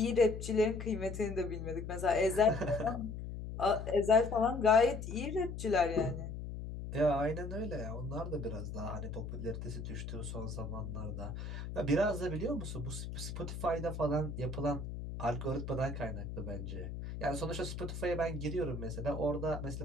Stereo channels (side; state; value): left; noise; hum, 7 dB below the sound